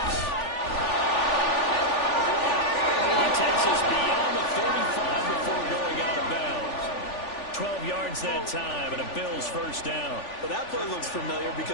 He takes us beyond the 35 before going out of bounds. 12 yards that time, and a Bills 1st down. Well, that play looks familiar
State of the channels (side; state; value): right; late; 3.4 ms